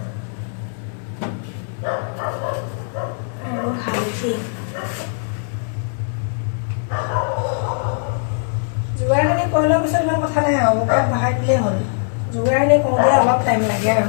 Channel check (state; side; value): silent; right; 65 dB below the other